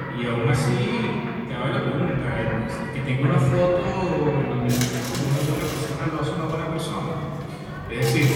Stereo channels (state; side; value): identical; both; correlation 1.00